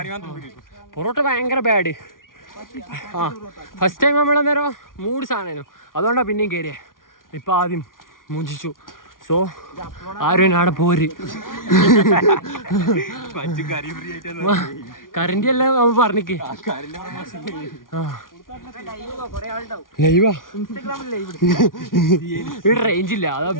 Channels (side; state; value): right; late; 0.90 ms